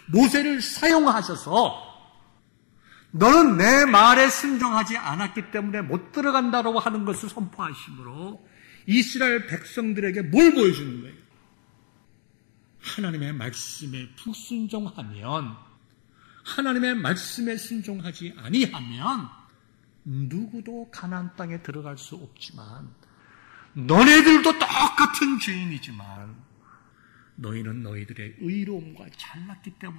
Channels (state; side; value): silent; right; 63 dB below the other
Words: 모세를 사용하셔서 너는 내 말에 순종하지 않았기 때문에 못 들어간다고 하는 것을 선포하심으로 이스라엘 백성들에게 뭘 보여주는 거예요? 하나님의 말씀에 불순종하면, 하나님의 말씀에 순종하지 아니하면 누구도 가나안 땅에 들어갈 수 없지만 너네들도 똑같은 죄인이지만 너희는 너희들의 의로움과 잘났기